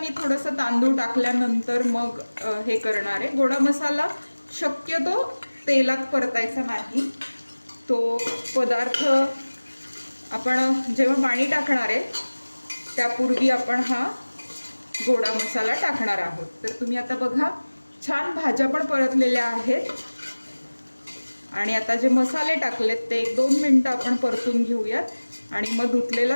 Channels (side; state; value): both; inverted; correlation -1.00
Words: थोडंसं तांदूळ टाकल्यानंतर मग हे करणार आहे. गोडा मसाला शक्यतो तेलात परतायचा नाही. तो पदार्थ आपण जेव्हा पाणी टाकणार आहे त्यापूर्वी आपण हा गोडा मसाला टाकणार आहोत. तर तुम्ही आता बघा, छान भाज्या पण परतलेल्या आहेत. आणि आता जे मसाले टाकलेत ते 1-2 मिनटं आपण परतून घेऊयात. आणि मग